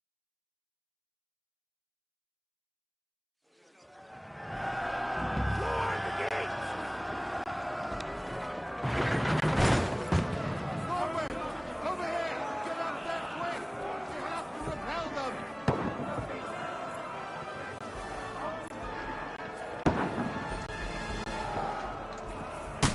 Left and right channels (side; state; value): both; identical; correlation 1.00